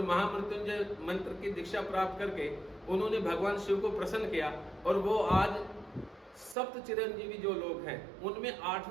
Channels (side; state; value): left; drops out; at 6.6 s